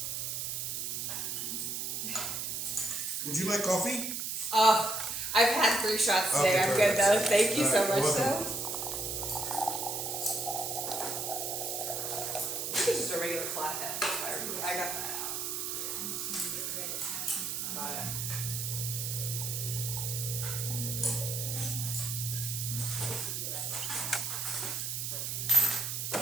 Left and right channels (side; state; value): right; noise; hiss, 2 dB below the sound